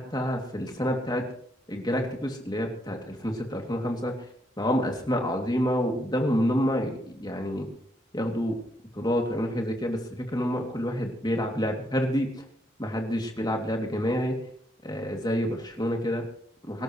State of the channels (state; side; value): normal; both; correlation 0.75